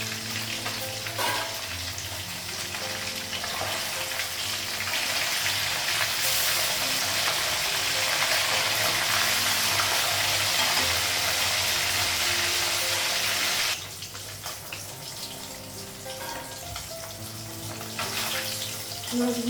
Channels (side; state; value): both; identical; correlation 1.00